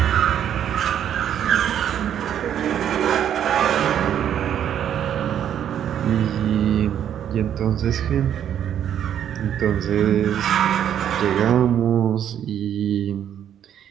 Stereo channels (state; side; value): quieter; left; 9.7 dB